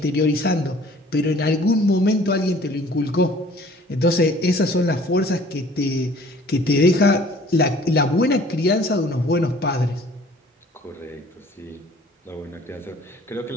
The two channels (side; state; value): both; normal; correlation 0.52